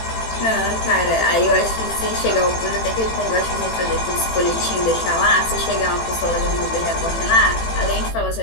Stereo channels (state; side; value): late; right; 18 ms